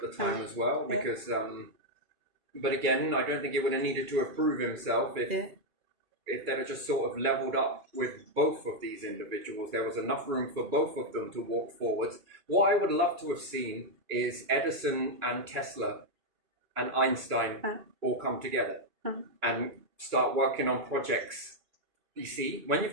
the time as well, Yeah. because, but again, I don't think he would have needed to approve himself if they'd have just sort of leveled up with both of these individuals. There was enough room for both of them to walk forwards. What I would love to have seen is Edison and Tesla and Einstein all come together and start working on projects. You see, when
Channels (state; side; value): late; left; 2.3 ms